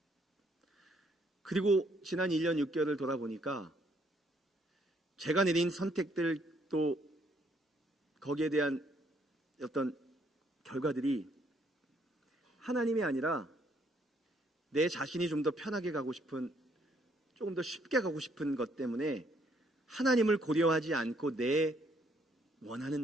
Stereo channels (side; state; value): both; normal; correlation 0.68